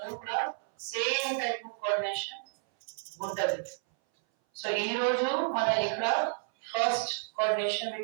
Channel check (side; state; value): left; silent; 57 dB below the other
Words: కూడా సేమ్ టైప్ ఆఫ్ కోఆర్డినేషన్ ఉంటది. సో ఈ రోజు మన ఇక్కడ ఫస్ట్ కోఆర్డినేషన్